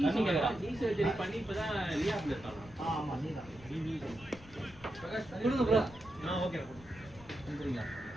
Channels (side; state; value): left; noise; rumble, 20 dB below the sound